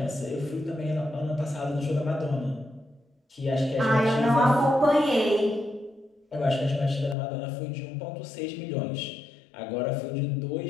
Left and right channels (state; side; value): drops out; right; at 7.2 s